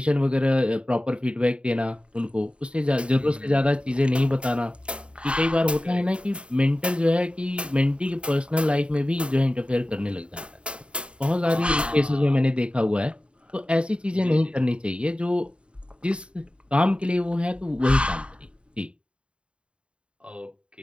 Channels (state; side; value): late; left; 0.056 ms